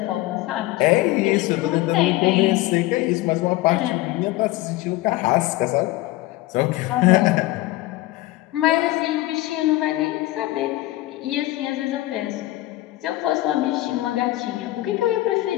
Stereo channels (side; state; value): right; quieter; 17.4 dB